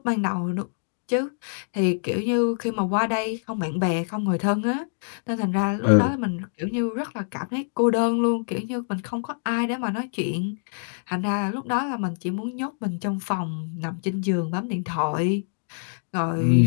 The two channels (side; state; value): right; silent; digital silence